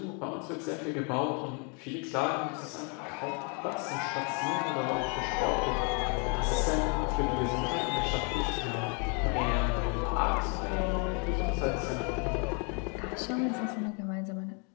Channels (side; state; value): right; quieter; 36.5 dB